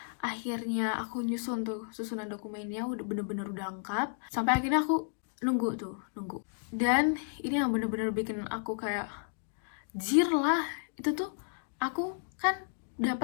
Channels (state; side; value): silent; right; digital silence